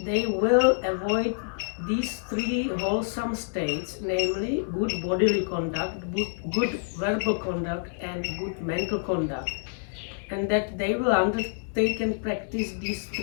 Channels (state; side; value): silent; right; digital silence